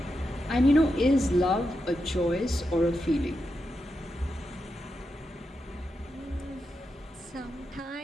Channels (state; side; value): normal; both; correlation 0.87